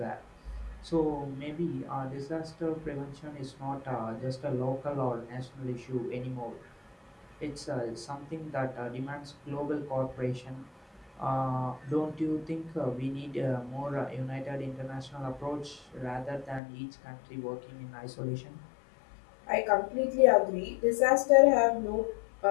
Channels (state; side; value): drops out; right; at 16.6 s